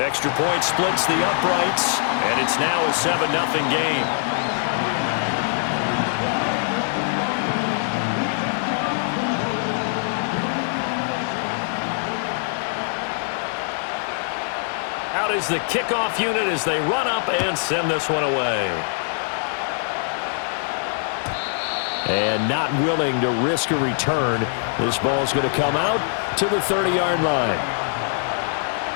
Extra point splits the uprights, and it's now a 7-0 game. Out is the kickoff unit as they run up and send this one away. And not willing to risk a return. This ball's going to come out to the 30-yard line.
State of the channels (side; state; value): right; silent; 64 dB below the other